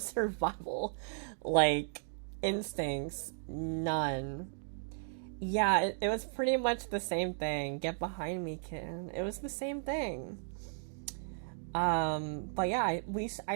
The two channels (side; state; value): left; silent; digital silence